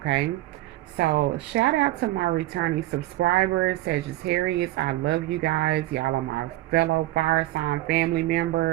So, shout out to my returning subscribers, Sagittarius. I love you guys. Y'all are my fellow fire sign family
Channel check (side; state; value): left; quieter; 16.7 dB